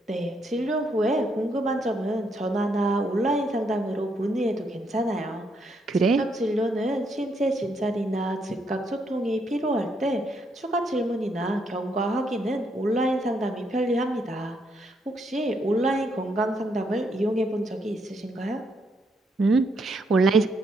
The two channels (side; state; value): both; normal; correlation 0.75